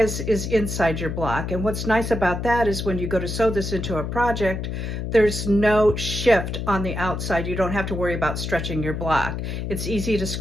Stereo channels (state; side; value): noise; left; hum, 4 dB below the sound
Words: is inside your block. And what's nice about that is when you go to sew this into a project, there's no shift on the outside. You don't have to worry about stretching your block. It's easy to